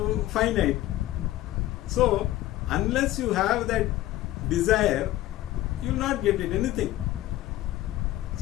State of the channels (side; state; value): right; quieter; 15.4 dB